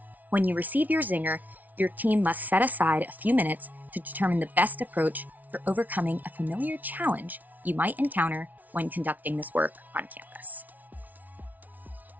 When you receive your zinger, your team must set aside a few minutes to determine the best approach for overcoming a familiar challenge you might encounter when conducting this work on campus.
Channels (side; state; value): left; late; 0.077 ms